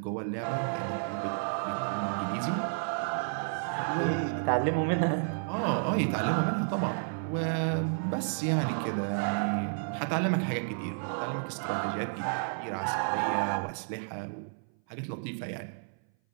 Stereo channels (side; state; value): left; silent; 57 dB below the other